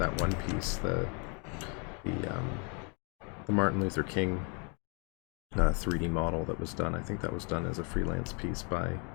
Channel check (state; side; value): quieter; right; 35.2 dB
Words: one piece, the Martin Luther King 3D model that was done. I think that was done as a freelance piece by